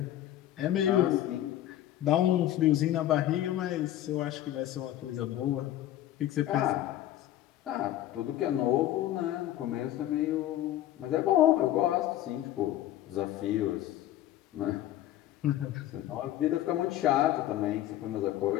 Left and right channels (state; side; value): quieter; right; 13.1 dB